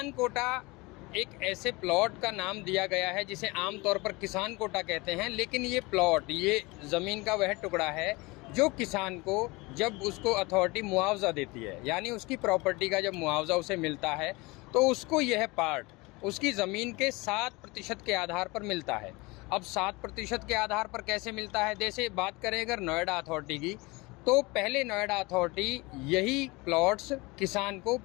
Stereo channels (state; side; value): quieter; right; 24.2 dB